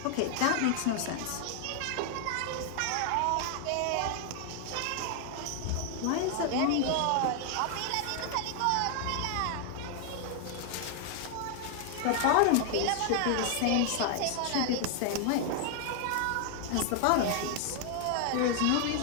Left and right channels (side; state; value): both; different; correlation 0.00